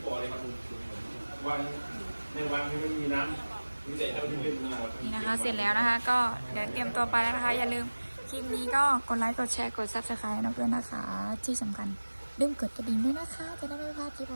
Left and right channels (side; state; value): both; inverted; correlation -1.00